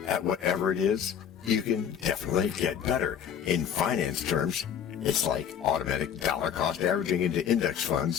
at whatever it is, you can definitely get better. In finance terms, it's like automatic dollar cost averaging into index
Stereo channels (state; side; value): quieter; right; 8.5 dB